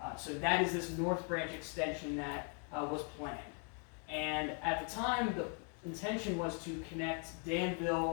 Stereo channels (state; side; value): quieter; right; 37.5 dB